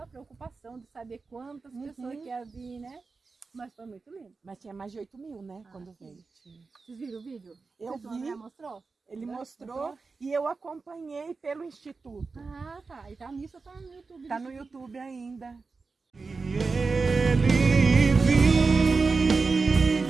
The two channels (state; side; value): quieter; left; 4.3 dB